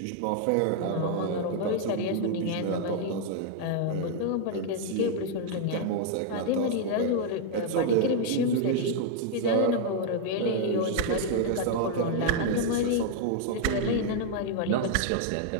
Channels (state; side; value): different; both; correlation 0.00